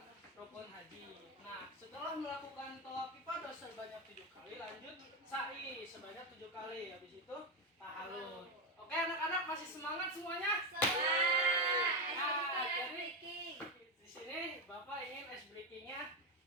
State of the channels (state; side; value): normal; both; correlation 0.10